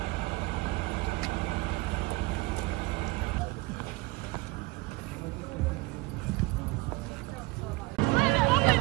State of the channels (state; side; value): quieter; left; 22.8 dB